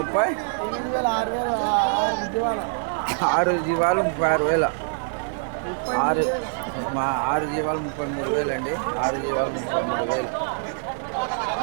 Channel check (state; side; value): silent; left; digital silence